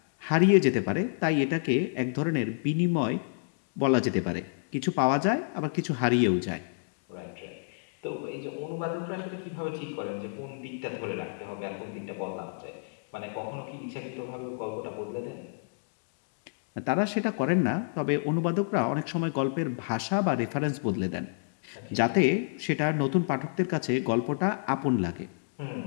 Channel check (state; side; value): silent; right; digital silence